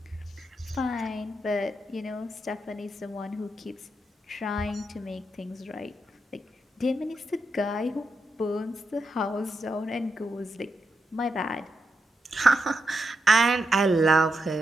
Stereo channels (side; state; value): both; normal; correlation 0.84